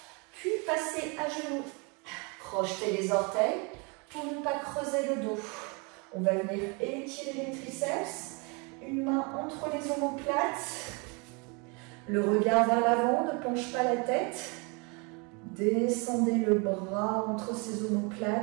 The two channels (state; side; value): quieter; left; 31.5 dB